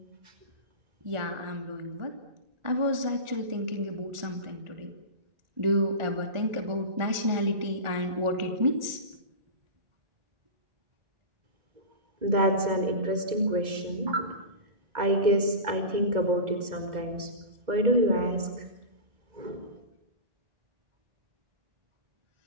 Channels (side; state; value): left; late; 1.4 ms